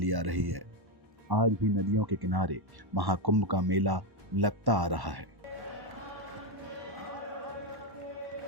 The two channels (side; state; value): left; late; 1.1 ms